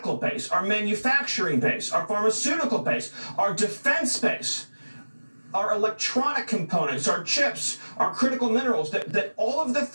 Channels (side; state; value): both; inverted; correlation -1.00